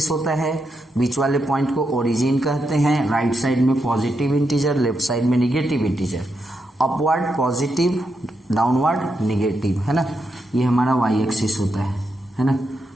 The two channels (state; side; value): normal; both; correlation 0.83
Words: होता है. बीच वाले पॉइंट को ओरिजिन कहते हैं. राइट साइड में पॉजिटिव इंटीजर, लेफ्ट साइड में negative integer. Upward positive, downward negative, है ना. ये हमारा वाई एक्सिस होता है ना.